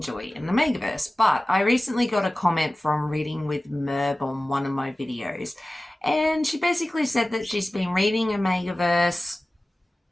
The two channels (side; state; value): both; normal; correlation 0.97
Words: an Omegaverse. But I recently got a comment from Reading with Merb on one of my videos, and she basically said that she's been reading Omegaverse